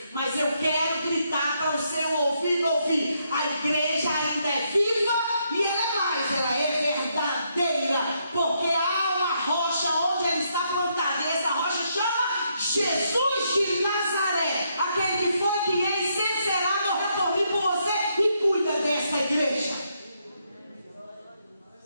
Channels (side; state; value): both; inverted; correlation -0.76